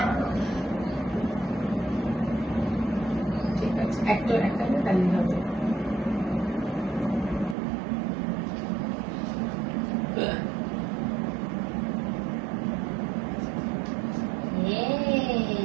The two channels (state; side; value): drops out; left; at 7.6 s